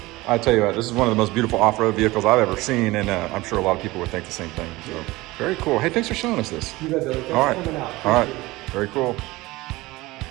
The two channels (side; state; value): left; quieter; 20.2 dB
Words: I tell you what, this is one of the most beautiful off-road vehicles I've ever seen, and I'm sure a lot of people would think the same thing. So very cool. Hey, thanks for showing us this. You bet, Billy. Thanks all right, for coming out. All right, very cool.